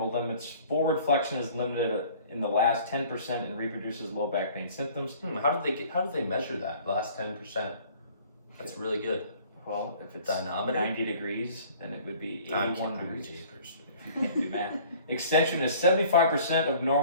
limits. Forward flexion is limited in the last 10% and reproduces low back pain symptoms. How did they measure that? The last 10%. That's really good. Well, if it's Dynamometer? 90 degrees, then it would be I'm 81 kidding. degrees. Jeepers. If you can't do math. Extension is 75% of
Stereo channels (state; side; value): inverted; both; correlation -0.51